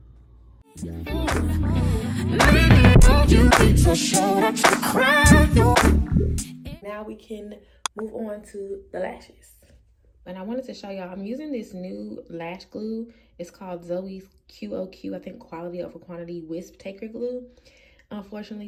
Now we can move on to the lashes. And I wanted to show y'all, I'm using this new lash glue. It's called Zoes QOQ, I think quality over quantity wisp taker glue.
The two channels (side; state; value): both; identical; correlation 1.00